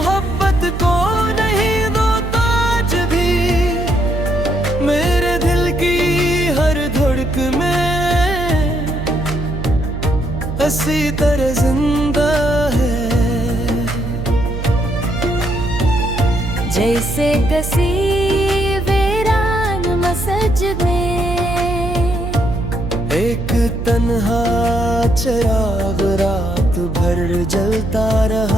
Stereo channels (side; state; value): right; noise; hum, 5 dB below the sound